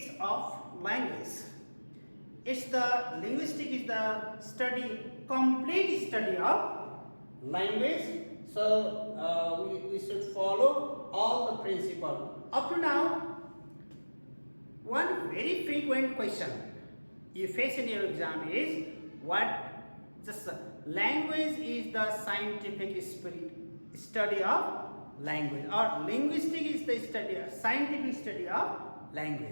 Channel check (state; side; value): inverted; both; correlation -1.00